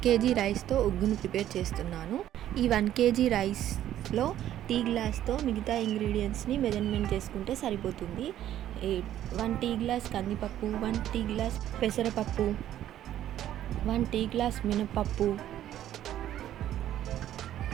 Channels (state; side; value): quieter; left; 12.0 dB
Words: kg రైస్తో ఉగ్గును ప్రిపేర్ చేస్తున్నాను. ఈ 1 kg రైస్లో టీ గ్లాస్తో మిగతా ఇంగ్రీడియంట్స్ని మెజర్మెంట్ చేసుకుంటే సరిపోతుంది. 1 టీ గ్లాస్ కందిపప్పు, 1 టీ గ్లాస్ పెసరపప్పు, 1 టీ గ్లాస్ మినపప్పు,